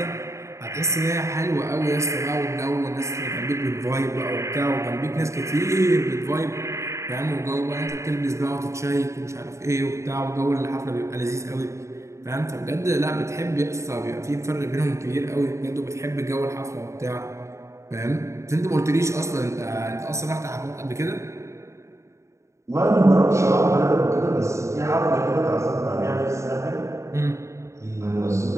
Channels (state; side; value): late; left; 0.14 ms